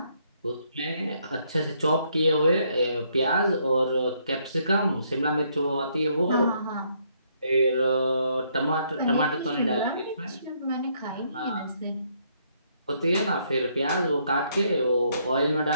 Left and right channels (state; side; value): inverted; both; correlation -0.71